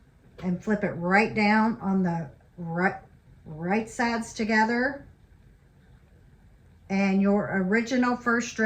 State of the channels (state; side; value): identical; both; correlation 1.00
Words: and flip it right down on the right sides together. And your original first